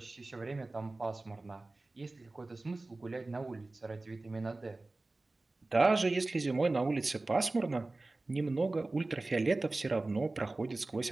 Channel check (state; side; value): quieter; left; 3.1 dB